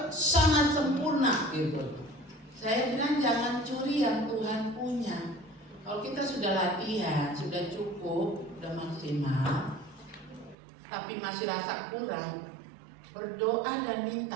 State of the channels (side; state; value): left; drops out; at 10.6 s